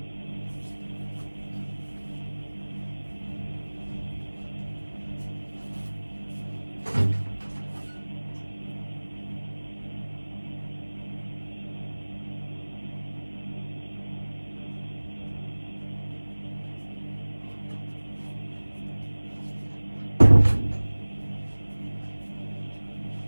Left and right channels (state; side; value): inverted; both; correlation -1.00